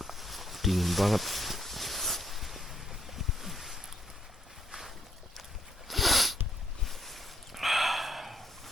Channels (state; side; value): normal; both; correlation 0.71